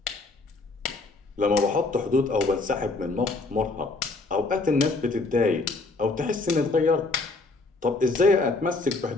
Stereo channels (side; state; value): right; quieter; 3.5 dB